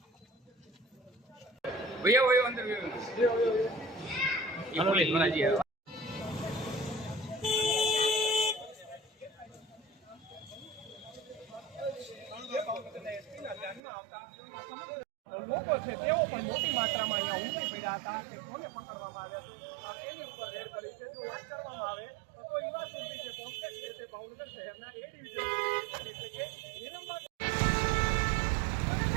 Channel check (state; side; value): drops out; left; at 13.8 s